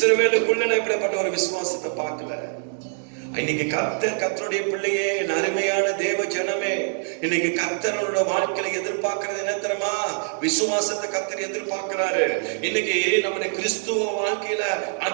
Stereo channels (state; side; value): silent; left; 62 dB below the other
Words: நான் இப்படிப்பட்ட ஒரு விசுவாசத்தை பார்க்கல. இன்னைக்கு கர்த்தருடைய பிள்ளையே, அருமையான தேவ ஜனமே, இன்னைக்கு கர்த்தரோட வாழ்க்கையில எதிர்பார்க்கிறது என்ன தெரியுமா? விசுவாசத்தை கர்த்தர் எதிர்பார்க்கிறாரு. இன்னைக்கு நம்முடைய கிறிஸ்துவ வாழ்க்கையில